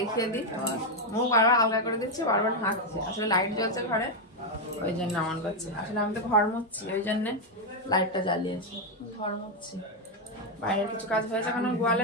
দিই, মুখ বারবার আলগা করে দিচ্ছে, বারবার হাঁকছে। আসলে লাইট জ্বলছে ঘরে, ওই জন্য এমন করছে। আসলে আমি তো ঘর মুছছি, ওই জন্যে লাইটটা জ্বালিয়েছি। ঘর মুছছি, বাইরের কিছু কাজ হয়েছে, এখন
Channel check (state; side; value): normal; both; correlation 0.03